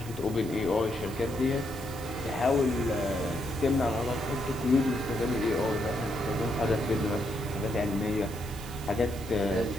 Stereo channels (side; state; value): right; noise; hiss, 16 dB below the sound